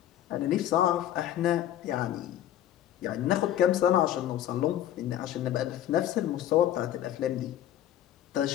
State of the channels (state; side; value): quieter; right; 11.9 dB